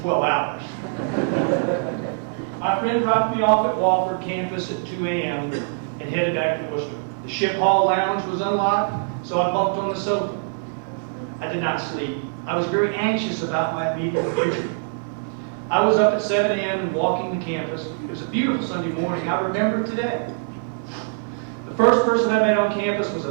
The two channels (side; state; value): left; silent; digital silence